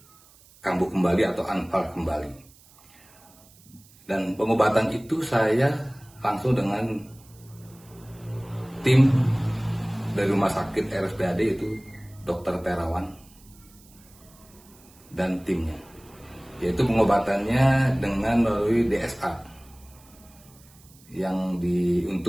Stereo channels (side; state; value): right; noise; hiss, 26 dB below the sound